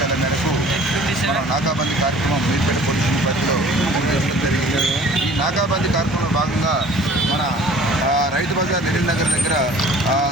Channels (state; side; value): normal; both; correlation 0.49